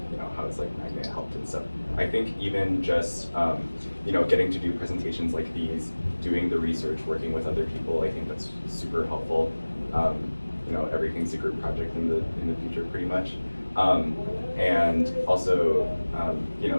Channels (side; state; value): both; inverted; correlation -1.00